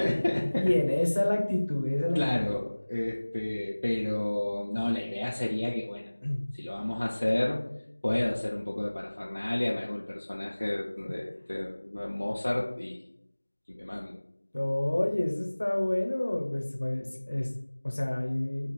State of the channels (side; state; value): both; inverted; correlation -1.00